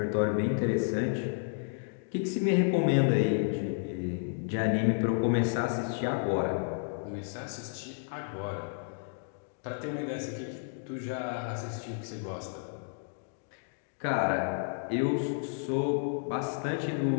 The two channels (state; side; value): silent; right; digital silence